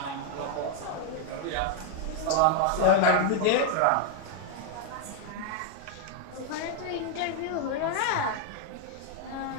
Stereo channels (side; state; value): both; different; correlation 0.00